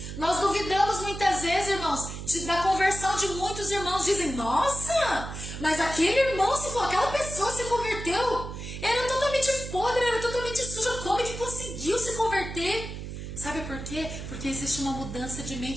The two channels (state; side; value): noise; right; hum, 8 dB below the sound